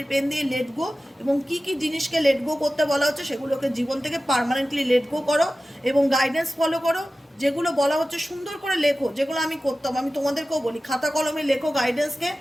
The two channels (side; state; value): both; normal; correlation 0.95